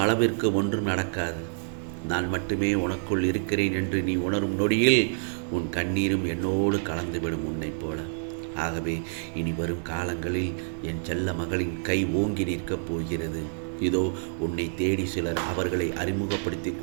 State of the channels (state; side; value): silent; left; digital silence